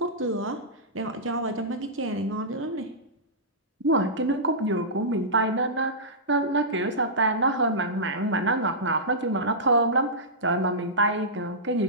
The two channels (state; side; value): normal; both; correlation -0.16